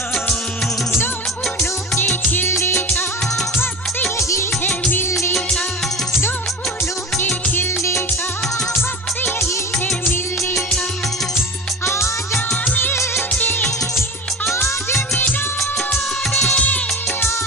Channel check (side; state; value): both; normal; correlation 0.32